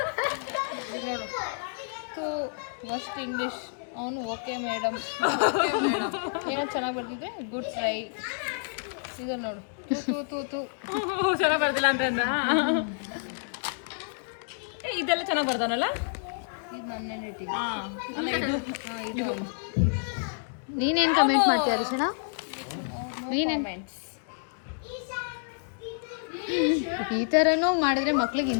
ನೋಡು ತೂ ಮಸ್ಟ್ ಇಂಗ್ಲೀಷ್. ಅವನು ಓಕೆ ಮೇಡಮ್ ಏನೋ ಚೆನ್ನಾಗಿ ಬರ್ದಿದ್ದೆ ಗುಡ್ ಟ್ರೈ. ಇದು ನೋಡು ತೂ ತೂ ತೂ ಚೆನ್ನಾಗಿ ಬರ್ದಿಲ್ಲ ಅಂತ ಇದೆಲ್ಲ ಚೆನ್ನಾಗಿ ಬರ್ದವನಲ್ಲ. ಇದು ನನ್ನ ರೇಟಿಂಗ್. ಇದು ನೀನೇನು ಕಮೆಂಟ್ ಮಾಡ್ತೀಯ ಅರಿಶಣ? ಈ ಥರನೂ ಮಾಡಿದ್ರೆ ಮಕ್ಳಿಗೆ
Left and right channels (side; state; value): right; silent; digital silence